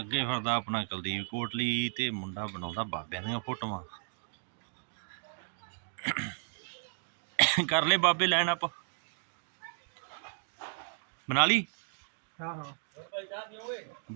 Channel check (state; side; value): silent; left; digital silence